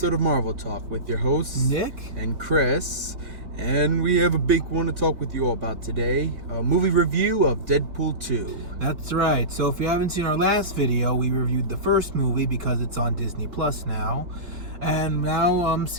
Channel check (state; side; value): late; left; 3.9 ms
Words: of Marvel Talk with your hosts, Nick and Chris. And we have a big one to talk with you all about today. A movie review of Deadpool 2. That's right. So if you haven't seen our last video, we reviewed the first movie because it's on Disney Plus now. And now I'm